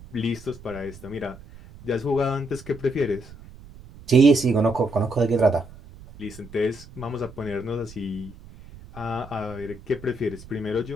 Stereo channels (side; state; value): right; noise; rumble, 18 dB below the sound